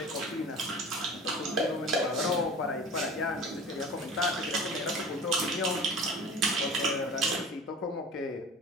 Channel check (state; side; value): normal; both; correlation 0.38